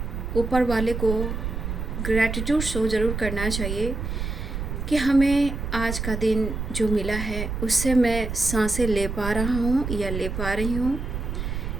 ऊपर वाले को ग्रैटिट्यूड शो ज़रूर करना चाहिए कि हमें आज का दिन जो मिला है उससे मैं सांसें ले पा रहा हूँ या ले पा रही हूँ,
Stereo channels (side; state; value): right; noise; rumble, 4 dB below the sound